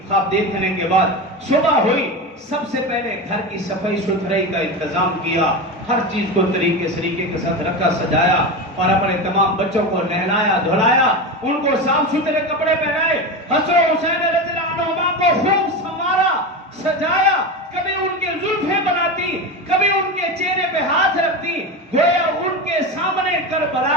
خواب دیکھنے کے بعد صبح ہوئی، سب سے پہلے گھر کی صفائی ستھرائی کا انتظام کیا، ہر چیز کو طریقے کے ساتھ رکھا سجایا، اور اپنے تمام بچوں کو نہلایا دھلایا، ان کو صاف ستھرے کپڑے پہنائے، حسن و حسین رضی اللہ عنہما کو خوب سنوارا سجایا، کبھی ان کے زلفیں بناتی، کبھی ان کے چہرے پہ ہاتھ رکھتی، گویا ان کے سامنے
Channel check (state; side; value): normal; both; correlation 0.21